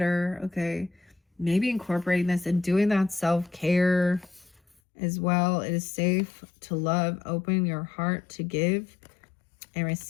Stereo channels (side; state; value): right; drops out; at 4.8 s